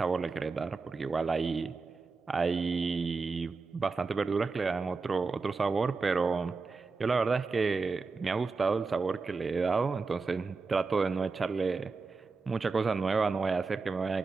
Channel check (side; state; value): left; quieter; 4.4 dB